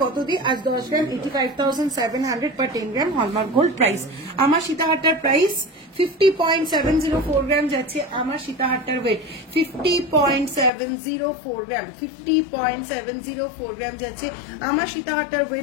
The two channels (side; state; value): right; drops out; at 10.7 s